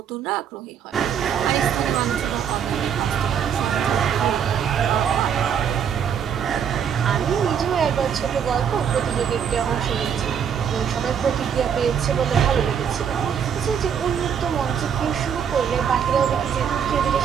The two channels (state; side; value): quieter; left; 7.9 dB